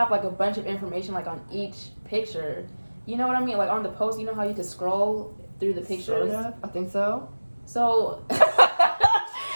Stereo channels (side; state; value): both; inverted; correlation -1.00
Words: like a bunch of information like on each picture. You know what I mean? Like on the post, you know how you can scroll through the pictures? Sort of. I think so. So I'm